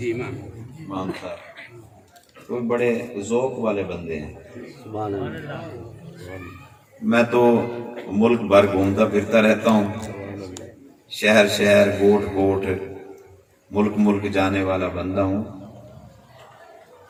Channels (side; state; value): both; identical; correlation 1.00